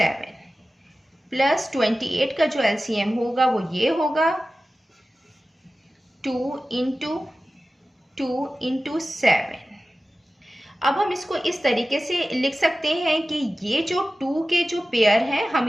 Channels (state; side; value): normal; both; correlation 0.95